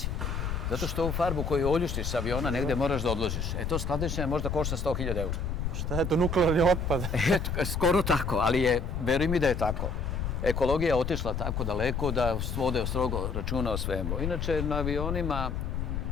Zato što ovu farbu koju oljuštiš sa aviona negde moraš da odložiš. To skladištenje možda košta 100.000 eura. Šta je to, nuklearni otpad? Skoro tako, ali veruj mi da je tako. Ekologija je otišla tako daleko da vode strogo računa o svemu. Inače, na avionima,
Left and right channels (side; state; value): left; noise; rumble, 2 dB below the sound